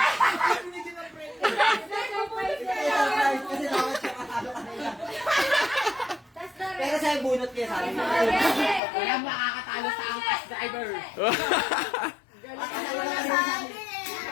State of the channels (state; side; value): drops out; right; at 8.8 s